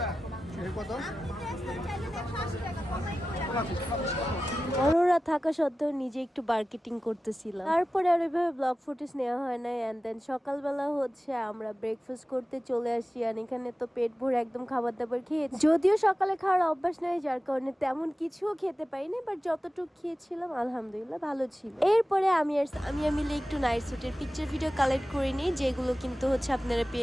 কত অরোরা থাকা সত্ত্বেও নিজে একটু মার্কেটিং করতেছিলাম তারপরে আর ওইভাবে ব্লগ ফুটেজ নেওয়া হয় না এন্ড দেন সকালবেলা হচ্ছে আমরা ব্রেকফাস্ট করতে চলে আসি আর এখানে তো পেট ভরে একদম খাবার দাবার খেয়েছি যদিও সকালে খাওয়ার অভ্যাস নাই যার কারণে তেমন কিছুও খেতে পাইনি বাট যতটুকু খেয়েছিলাম আলহামদুলিল্লাহ ভালো ছিল এরপরে আমি মিলে একটু নাইট স্যুটের পিকচার ভিডিও কালেক্ট করে নিই যেগুলো কিন্তু হচ্ছে আপনারা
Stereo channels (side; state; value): both; normal; correlation 0.95